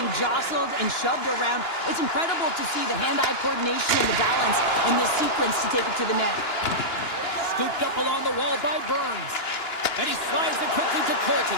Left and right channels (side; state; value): right; late; 2.9 ms